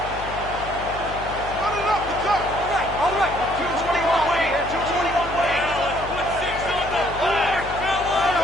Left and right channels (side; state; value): left; noise; hum, 12 dB below the sound